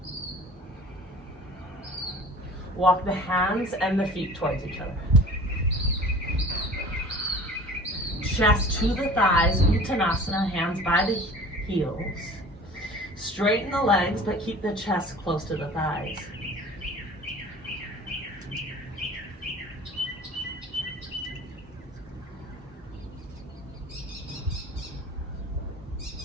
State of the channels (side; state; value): both; normal; correlation 0.43